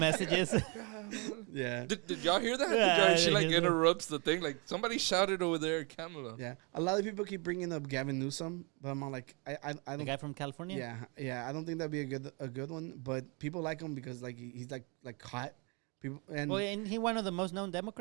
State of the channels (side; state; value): left; quieter; 32.2 dB